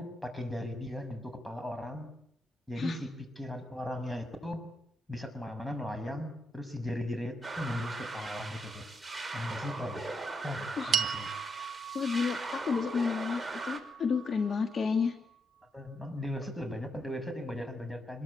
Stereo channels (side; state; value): both; normal; correlation 0.81